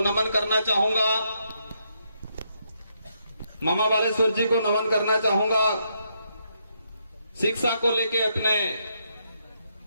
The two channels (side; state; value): both; inverted; correlation -0.78